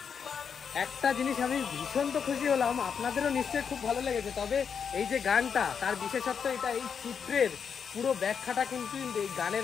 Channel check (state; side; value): quieter; right; 6.8 dB